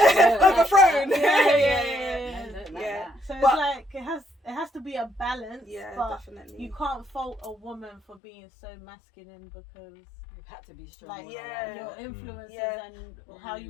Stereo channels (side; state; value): right; drops out; at 8.2 s